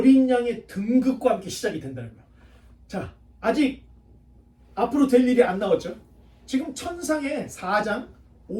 양의 등극과 함께 시작이 된다는 거예요. 자, 아직 앞으로 될 일이 안 나왔죠. 지금 천상의 4장,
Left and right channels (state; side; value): identical; both; correlation 1.00